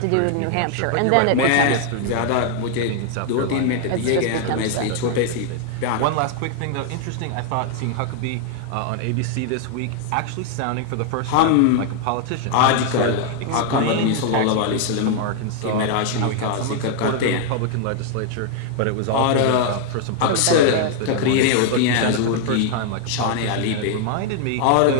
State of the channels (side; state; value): both; different; correlation 0.00